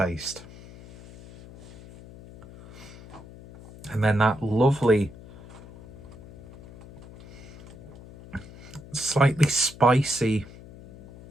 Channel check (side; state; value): left; noise; hum, 18 dB below the sound